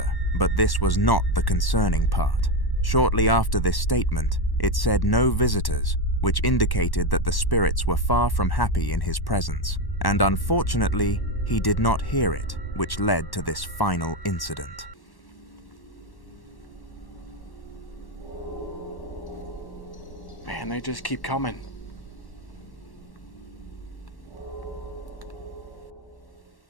but this was not the concerning part. Shortly after this statement, it said no visitors, which indicated that the spirits were far from happy in his presence, and unfortunately, he did not hear it, which led to this final incident. Man, they just keep coming.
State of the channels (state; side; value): late; right; 1.1 ms